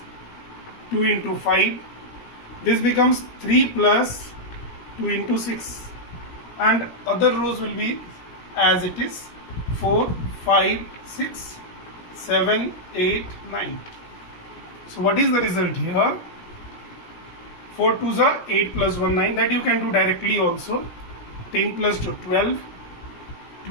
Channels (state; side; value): late; right; 17 ms